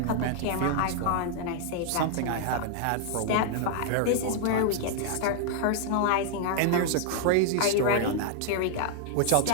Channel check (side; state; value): both; different; correlation -0.01